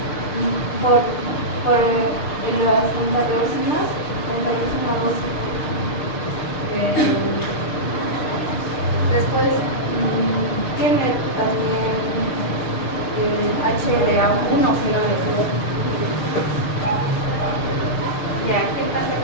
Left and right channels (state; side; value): late; right; 6.6 ms